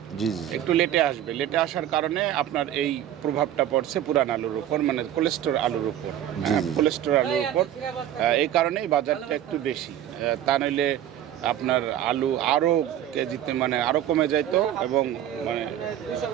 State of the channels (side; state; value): left; quieter; 11.4 dB